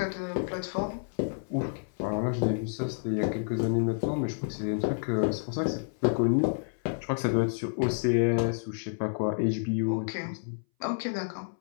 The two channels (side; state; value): right; silent; 58 dB below the other